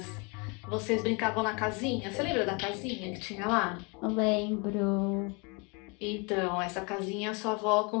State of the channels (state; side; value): quieter; right; 31.5 dB